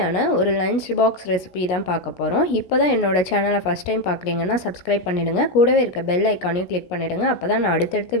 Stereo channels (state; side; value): late; right; 17 ms